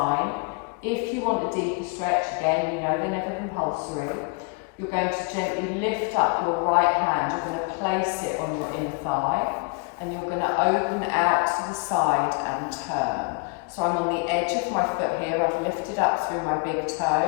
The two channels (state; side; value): quieter; right; 32.8 dB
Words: If you want a deeper stretch, again, you know they're never compulsory. You're going to gently lift up your right hand. You're going to place it on your inner thigh. And you're going to open out to the side and turn. So I'm on the edge of my foot here. I've lifted up through my big